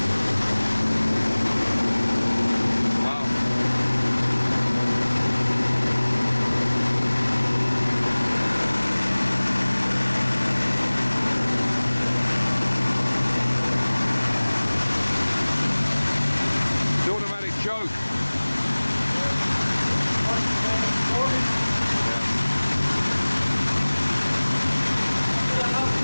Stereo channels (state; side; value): inverted; both; correlation -1.00